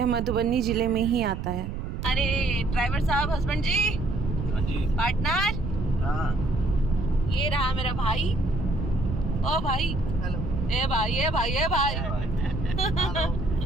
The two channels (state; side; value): noise; right; rumble, 4 dB below the sound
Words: मधुबनी ज़िले में ही आता है। अरे ड्राइवर साहब, हस्बैंड जी, हाँ जी, पार्टनर, हाँ, ये रहा मेरा भाई। ओ भाई, हेलो, ए भाई, ए भाई, ए भाई।